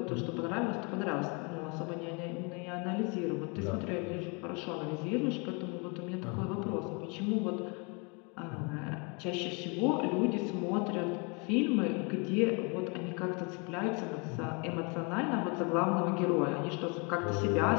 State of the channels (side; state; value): right; quieter; 32.5 dB